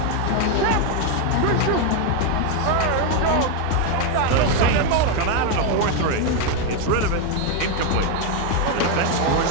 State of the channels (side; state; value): both; different; correlation 0.02